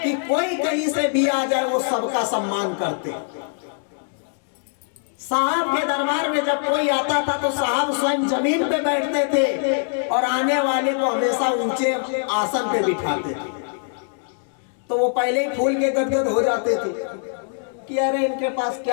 कि कोई कहीं से भी आ जाए वो सबका सम्मान करते। साहब के दरबार में जब कोई आता था तो साहब स्वयं जमीन पे बैठते थे और आने वाले को हमेशा ऊंचे आसन पे बिठाते थे। तो वो पहले ही फूल के गदगद हो जाते थे कि अरे इनके पास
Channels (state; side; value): silent; right; digital silence